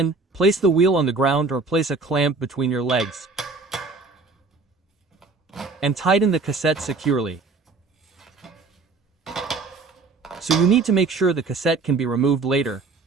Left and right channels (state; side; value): quieter; left; 4.0 dB